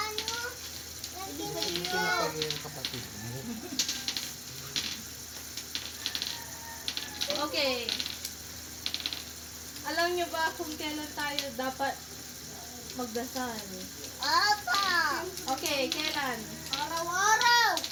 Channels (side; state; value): both; identical; correlation 1.00